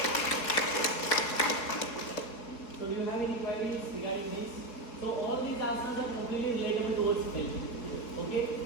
So do you have any queries regarding this? So all these asanas are completely relatable towards health. Okay.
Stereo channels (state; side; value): late; right; 4.1 ms